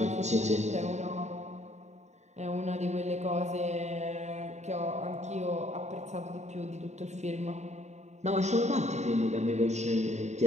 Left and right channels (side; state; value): left; late; 0.33 ms